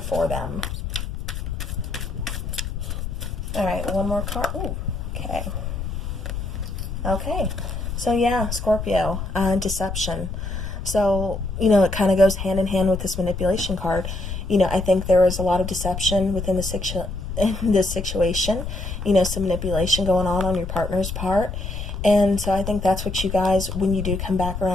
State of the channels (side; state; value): left; noise; rumble, 6 dB below the sound